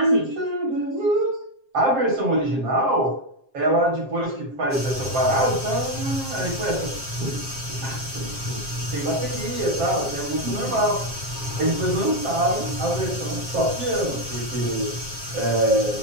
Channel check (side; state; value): left; late; 7.5 ms